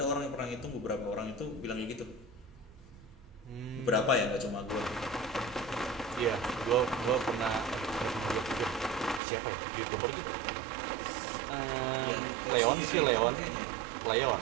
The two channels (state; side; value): drops out; left; at 9.2 s